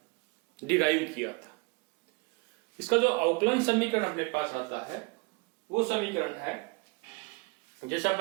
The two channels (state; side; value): quieter; left; 27.5 dB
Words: डिराइव किया था। इसका जो अवकलन समीकरण अपने पास आता है वो समीकरण है जैसा